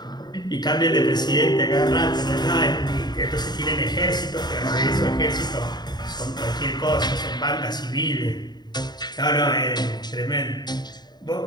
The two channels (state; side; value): late; right; 0.20 ms